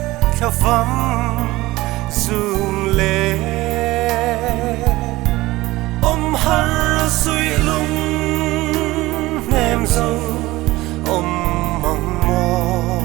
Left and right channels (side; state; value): left; quieter; 18.9 dB